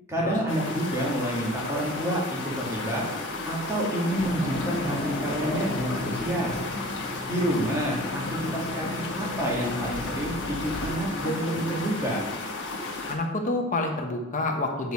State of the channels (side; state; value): both; normal; correlation 0.41